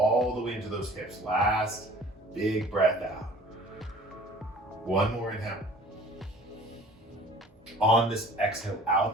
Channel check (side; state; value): both; normal; correlation 0.48